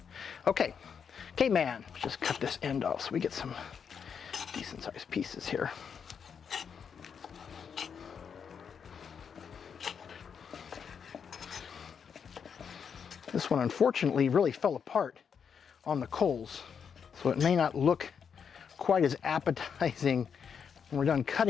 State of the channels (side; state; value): right; quieter; 6.9 dB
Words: Okay, Caveman, let's just cut this end off so we get some decent sized pieces here. This one unfortunately really fell apart on the coals, so it may not look quite as appetizing when we're done